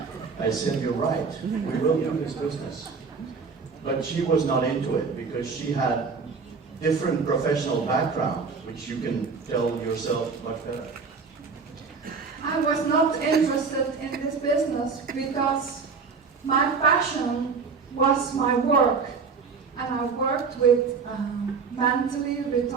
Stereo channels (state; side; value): quieter; left; 5.1 dB